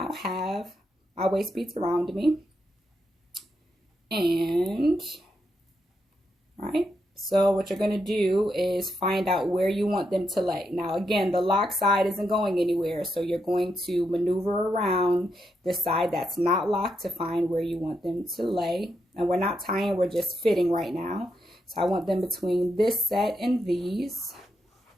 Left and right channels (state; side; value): normal; both; correlation 0.82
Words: have my waist beads around me, and right. So what you're going to do is find out where you want them to lay. Now, again, the lock side isn't going anywhere. So you're going to maneuver around the side that's not locked to find where you want them to lay. And we're not tying, we're just fitting right now. So I want them between this set and these.